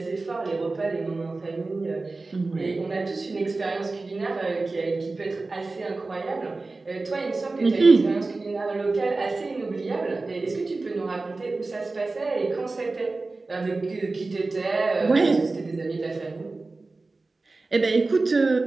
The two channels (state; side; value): quieter; left; 3.5 dB